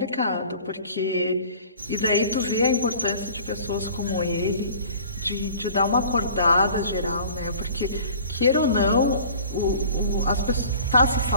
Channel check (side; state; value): both; inverted; correlation -0.47